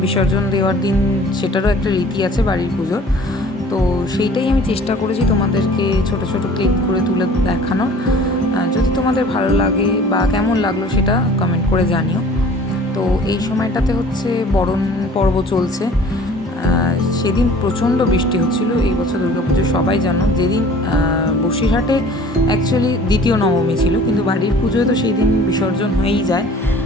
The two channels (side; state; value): both; normal; correlation 0.49